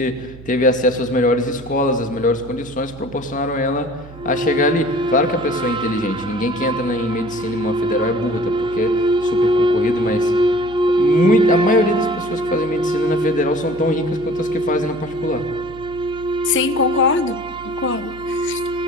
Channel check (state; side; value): noise; right; hum, 18 dB below the sound